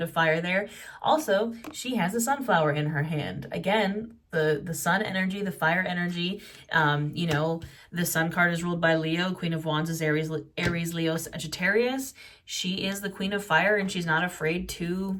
of fire there. Also, she has a sunflower in her hand. Again, the sun energy, the fire energy. You know, the sun card is ruled by Leo. Queen of Wands is Aries, Leo, Sagittarius. She is the Queen of Fire, and she's not afraid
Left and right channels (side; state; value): both; identical; correlation 1.00